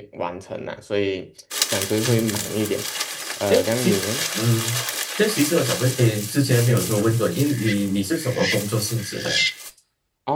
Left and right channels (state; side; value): identical; both; correlation 1.00